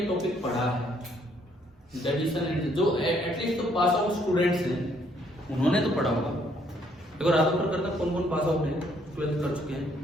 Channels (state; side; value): normal; both; correlation 0.68